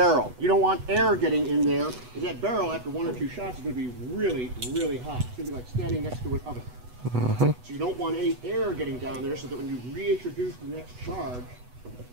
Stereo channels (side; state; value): left; late; 8.1 ms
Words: You don't want air getting in there, because that barrel, after 1 or 2 shots, is going to be really, really hot. It's going to be like standing next to an oven. So you don't want any air getting down there, so that when you reintroduce the next charge,